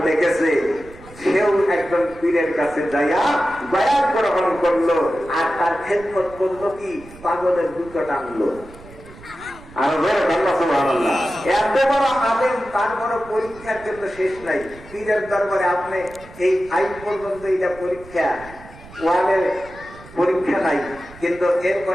লিখেছে, সেও একজন পীরের কাছে যাইয়া বায়াত গ্রহণ করলো, আর তার খেদমত করলো কি? পাগলের দুটো টানলো। আর সুবহানাল্লাহ, এত বড় আলেম, তার বড় পরীক্ষার জন্য শেষ নাই। পীরের দরবারে আপনি এই 5 পর্যন্ত এটা পরীক্ষা, 1-এর পরীক্ষা নাই, কিন্তু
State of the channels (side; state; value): right; noise; rumble, 20 dB below the sound